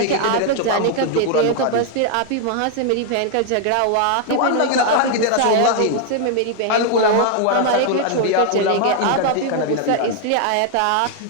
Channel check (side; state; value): both; different; correlation 0.00